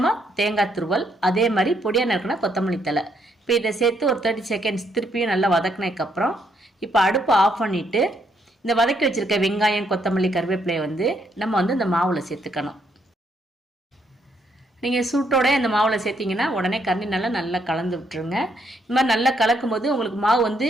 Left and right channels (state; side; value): normal; both; correlation 0.73